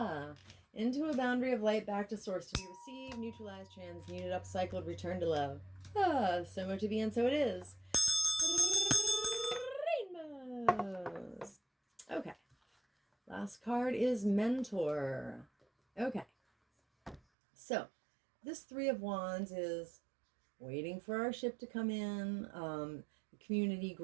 Into a boundary of light back to source to be received, neutralized, transmuted, upcycled, returned to love. So much to be and so it is. Rainbows. Okay. Last card is Mentor. Okay. So, this Three of Wands is waiting for our ship to come in. The community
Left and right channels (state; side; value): drops out; left; at 17.2 s